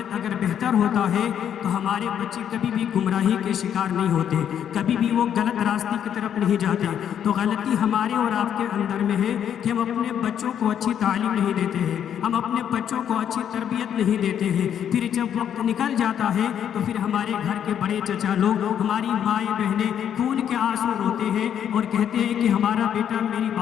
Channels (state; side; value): quieter; right; 9.2 dB